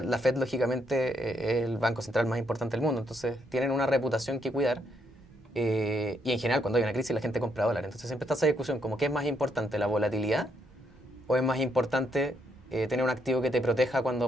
lógicamente es el banco central más importante del mundo, entonces tienen una reputación que cuidar y en general cuando hay una crisis la gente compra dólares, entonces siempre está esa discusión como ¿qué es más importante, la volatilidad o es más importante tener un activo que te proteja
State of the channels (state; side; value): normal; both; correlation 0.75